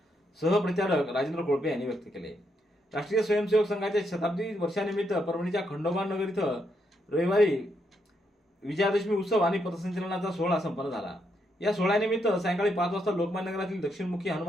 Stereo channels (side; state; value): both; normal; correlation 0.78